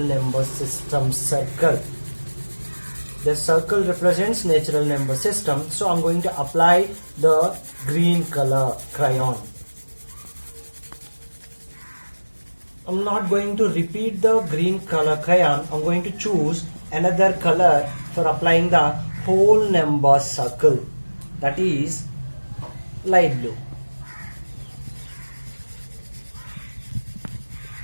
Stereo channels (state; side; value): inverted; both; correlation -1.00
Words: system circle. The circle represents natural number system, so I'm going to apply the green color crayon. I'm not going to repeat the green color crayon. I'm going to choose another color for applying the whole number circle, that is light blue.